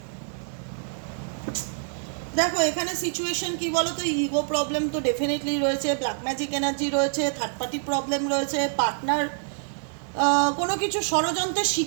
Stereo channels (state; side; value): silent; left; digital silence